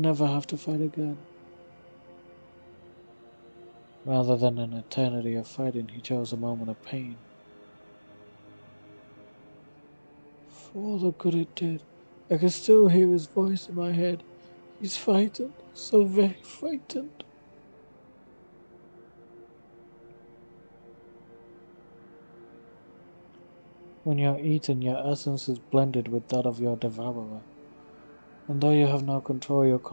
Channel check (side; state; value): both; inverted; correlation -1.00